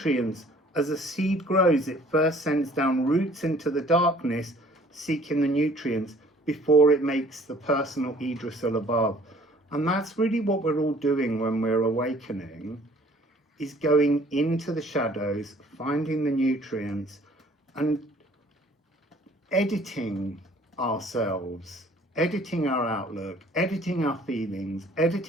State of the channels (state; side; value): normal; both; correlation 0.55